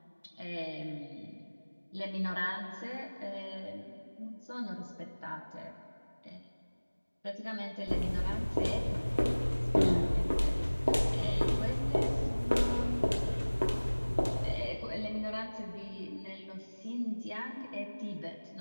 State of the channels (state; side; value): inverted; both; correlation -1.00